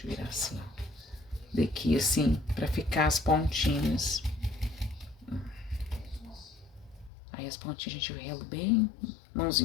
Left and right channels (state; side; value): drops out; right; at 7.1 s